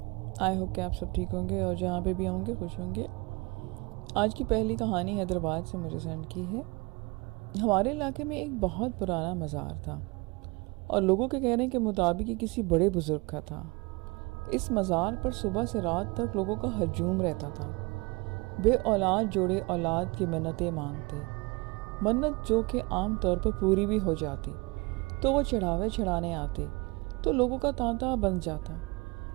آئی ہوپ کہ آپ سب ٹھیک ہوں گے اور جہاں پہ بھی ہوں گے خوش ہوں گے۔ آج کی پہلی کہانی حیدرآباد سے مجھے سینڈ کی ہے۔ ہمارے علاقے میں ایک بہت پرانا مزار تھا اور لوگوں کے کہنے کے مطابق یہ کسی بڑے بزرگ کا تھا۔ اس مزار پر صبح سے رات تک لوگوں کا ہجوم رہتا تھا۔ بے اولاد جوڑے اولاد کی منتیں مانگتے، منت جو کہ عام طور پر پوری بھی ہو جاتی تو وہ چڑھاوے چڑھانے آتے تو لوگوں کا تانتا بن جاتا۔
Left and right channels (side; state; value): left; quieter; 26.7 dB